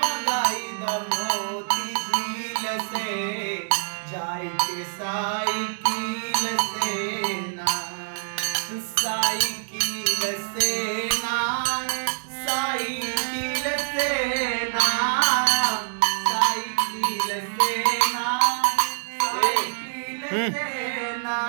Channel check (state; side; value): silent; left; digital silence